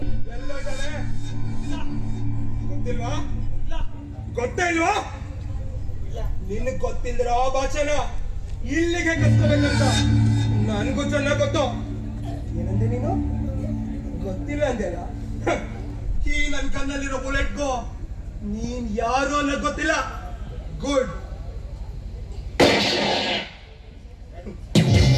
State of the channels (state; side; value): identical; both; correlation 1.00